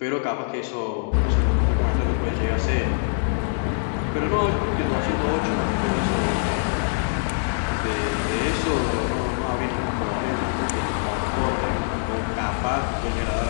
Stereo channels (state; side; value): silent; right; digital silence